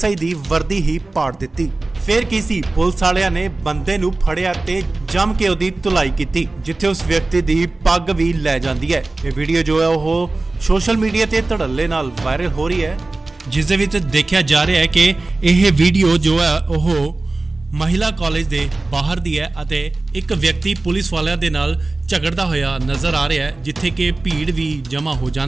ਦੀ ਵਰਦੀ ਹੀ ਪਾੜ ਦਿੱਤੀ। ਫਿਰ ਕੀ ਸੀ, ਪੁਲਿਸ ਵਾਲਿਆਂ ਨੇ ਬੰਦੇ ਨੂੰ ਫੜਿਆ ਤੇ ਜੰਮ ਕੇ ਉਹਦੀ ਧੁਲਾਈ ਕੀਤੀ, ਜਿੱਥੇ ਉਸ ਵਿਅਕਤੀ ਦੀ ਪੱਗ ਵੀ ਲੈ ਜਾਂਦੀ ਹੈ। ਇਹ ਵੀਡੀਓ ਜੋ ਹੈ ਉਹ ਸੋਸ਼ਲ ਮੀਡੀਆ ਤੇ ਧੜੱਲੇ ਨਾਲ ਵਾਇਰਲ ਹੋ ਰਹੀ ਹੈ, ਜਿਸ ਦੇ ਵਿੱਚ ਦੇਖਿਆ ਜਾ ਰਿਹਾ ਹੈ ਕਿ ਇਹ ਵੀਡੀਓ ਜੋ ਹੈ ਉਹ ਮਹਿਲਾ ਕਾਲਜ ਦੇ ਬਾਹਰ ਦੀ ਹੈ ਅਤੇ ਇੱਕ ਵਿਅਕਤੀ ਪੁਲਿਸ ਵਾਲਿਆਂ ਦੇ ਨਾਲ ਝਗੜਦਾ ਹੋਇਆ ਨਜ਼ਰ ਆ ਰਿਹਾ ਹੈ, ਜਿੱਥੇ ਕਿ ਭੀੜ ਵੀ ਜਮ੍ਹਾਂ ਹੋ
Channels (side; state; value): left; quieter; 3.2 dB